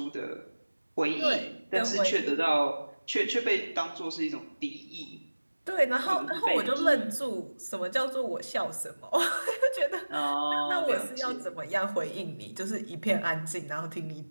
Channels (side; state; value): both; inverted; correlation -1.00